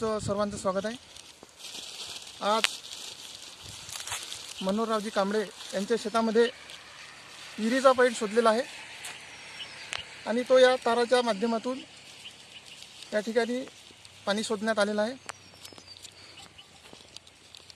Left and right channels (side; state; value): both; identical; correlation 1.00